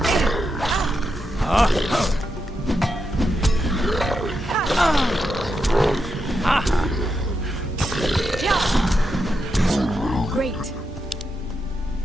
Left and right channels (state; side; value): normal; both; correlation 0.85